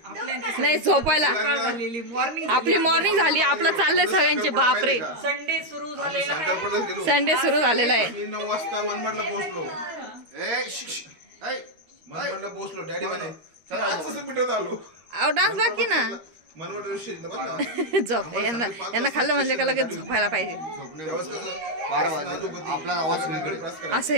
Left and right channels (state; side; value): late; left; 13 ms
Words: नाही झोपायला आपली मॉर्निंग झाली आपलं चाललंय सगळ्यांचे बापरे संडे सुरू झालेला संडे सुरू झालेला आहे 9 वाजता मनमाडला पोहोचलो मनमाडला पोहोचलो डॅडी म्हणे पिठवत आलो अहो डान्स बाकी ना मनमाड झोप यांना खाल्लं म्हणजे का लगेच झोपायला पाहिजे आपला आवाज सगळीकडे असं